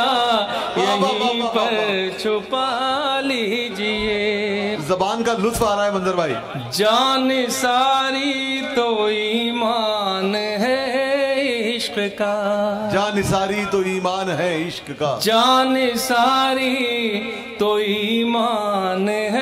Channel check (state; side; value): identical; both; correlation 1.00